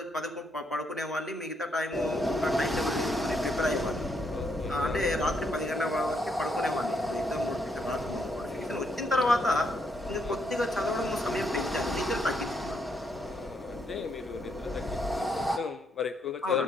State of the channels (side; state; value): both; normal; correlation 0.76